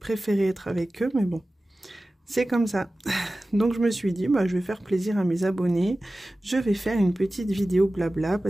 être avec eux, mais bon, c'est comme ça. Donc je me suis dit, bah, je vais faire plaisir à mes abonnés, je vais faire une petite vidéo blabla,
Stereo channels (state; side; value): normal; both; correlation 0.96